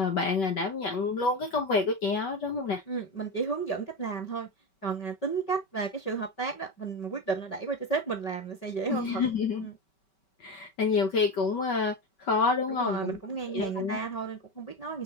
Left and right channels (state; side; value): late; right; 5.2 ms